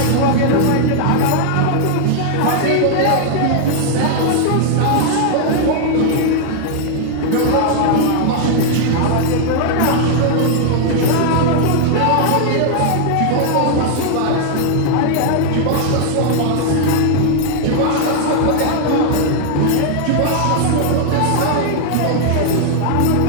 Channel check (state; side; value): different; both; correlation -0.01